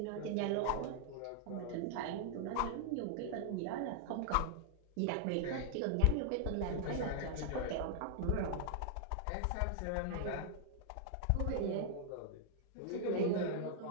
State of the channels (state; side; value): different; both; correlation -0.01